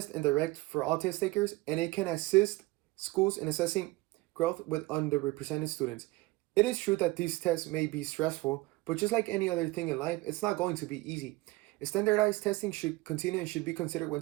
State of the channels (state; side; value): quieter; left; 20.4 dB